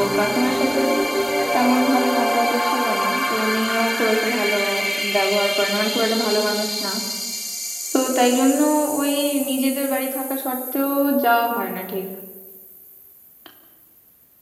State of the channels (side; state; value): both; identical; correlation 1.00